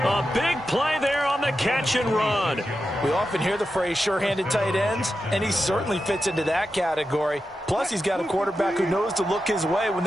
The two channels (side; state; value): both; normal; correlation 0.90